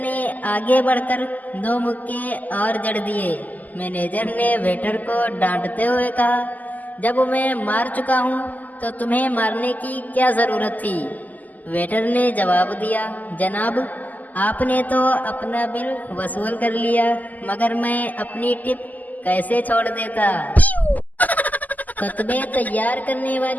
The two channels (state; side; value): late; right; 0.081 ms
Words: آگے بڑھ کر 2 مکے اور جڑ دیے۔ مینیجر نے ویٹر کو ڈانٹتے ہوئے کہا، جب میں مار چکا ہوں تو تمہیں مارنے کی کیا ضرورت تھی؟ ویٹر نے جواب دیا، جناب آپ نے تو اپنا بل وصول کر لیا، مگر میں اپنی ٹپ کیسے چھوڑ دیتا؟ کتبے تیار کرنے